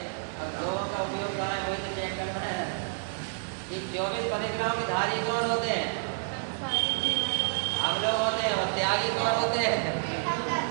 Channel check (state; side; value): silent; left; digital silence